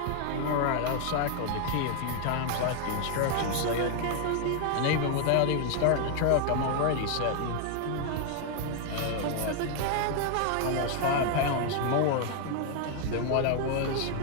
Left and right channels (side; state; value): both; different; correlation 0.00